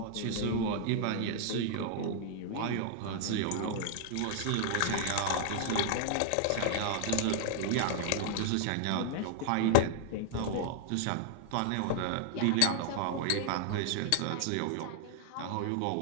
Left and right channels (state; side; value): different; both; correlation 0.00